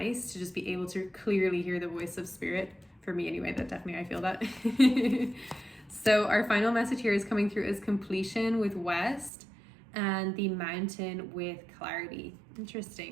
to just be able to clearly hear the voice of spirit. For me anyway, that definitely I feel that. So our final message here is coming through as completion with West and the mountain with clarity.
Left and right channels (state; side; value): drops out; left; at 9.3 s